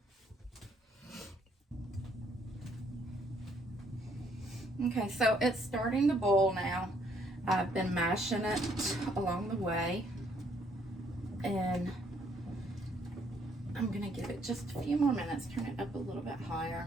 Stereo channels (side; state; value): both; normal; correlation 0.68